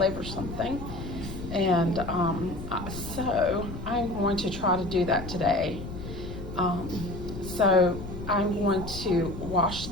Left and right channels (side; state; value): left; noise; rumble, 9 dB below the sound